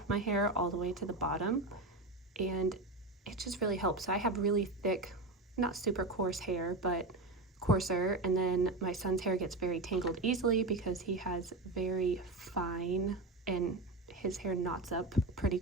of my hair all the way to the bottom, and it just really helps. So I have really thick, not super coarse hair, but coarser, and then my son's hair gets very tangled easily because he has very fine, and his hair knots up pretty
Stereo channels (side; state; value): both; normal; correlation 0.20